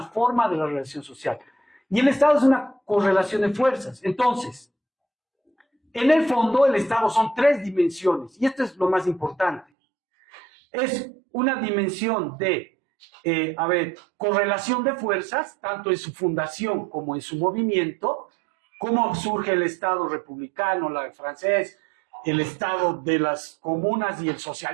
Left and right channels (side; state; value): left; drops out; at 9.7 s